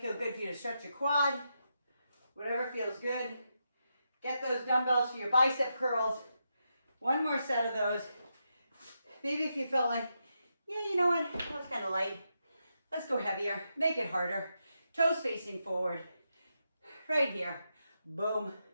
good for you to stretch your quad. Whatever feels good. Get those dumbbells for your bicep curls. One more set of those. Maybe if you feel like, yeah, you know what, that was kind of light. Let's go heavier, make it harder. Toes facing forward. Right here, boom,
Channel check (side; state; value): both; inverted; correlation -0.85